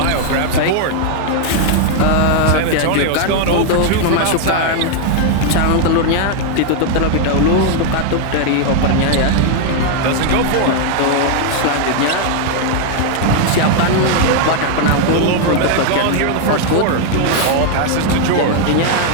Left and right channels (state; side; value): different; both; correlation 0.00